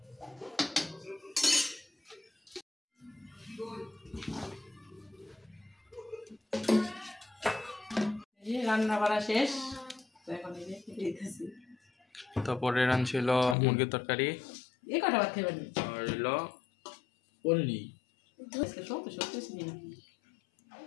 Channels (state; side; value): drops out; right; at 13.6 s